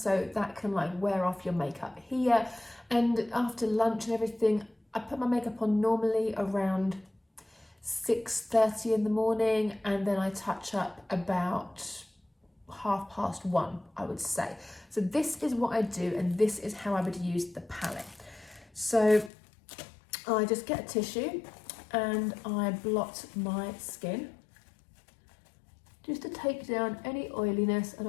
so that can like wear off your makeup here. And after lunch and everything, I put my makeup on normally around 6:30 in the morning, and then I touch up about 1:30, I would say. So this is what I do, and this is how I would use the palette. So I just get a tissue and I blot my skin just to take down any oiliness, and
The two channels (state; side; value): drops out; right; at 19.3 s